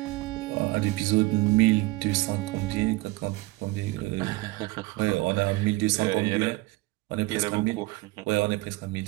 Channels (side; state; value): left; quieter; 21.2 dB